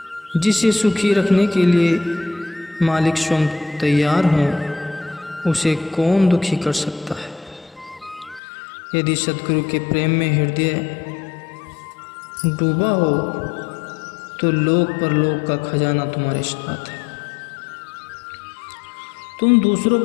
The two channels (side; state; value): right; drops out; at 8.4 s